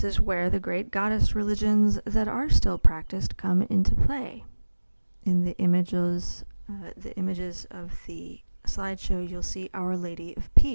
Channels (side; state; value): both; inverted; correlation -1.00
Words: is where the great goddess religions that are still practiced come into play. In the images of the slideshow, you'll see Our Lady of